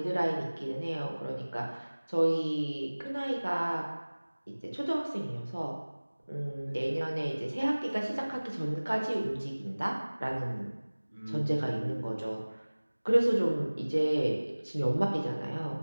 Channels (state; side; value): inverted; both; correlation -1.00